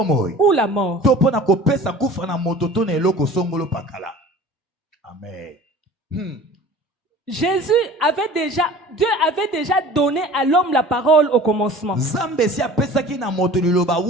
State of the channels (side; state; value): both; normal; correlation 0.43